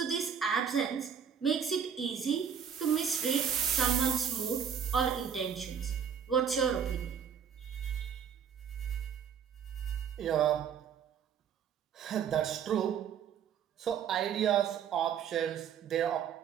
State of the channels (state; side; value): quieter; left; 7.7 dB